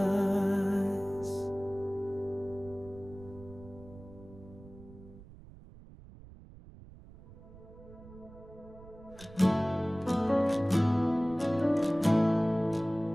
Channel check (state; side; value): noise; right; rumble, 19 dB below the sound